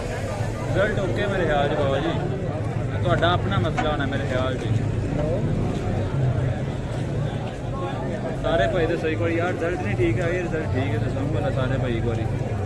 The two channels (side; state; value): both; identical; correlation 1.00